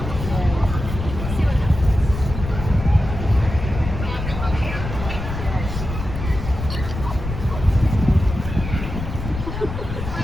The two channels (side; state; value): left; noise; rumble, 6 dB below the sound